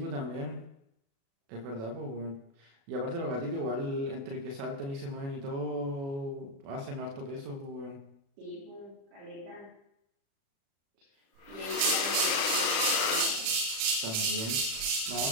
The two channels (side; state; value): left; late; 36 ms